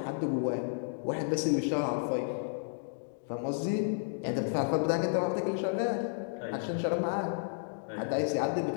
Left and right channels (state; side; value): silent; right; digital silence